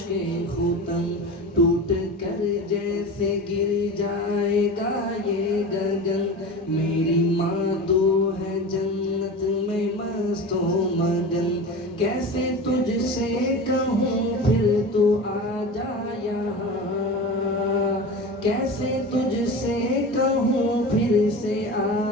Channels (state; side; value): normal; both; correlation 0.30